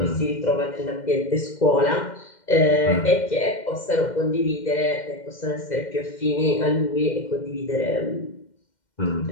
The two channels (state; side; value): late; right; 2.1 ms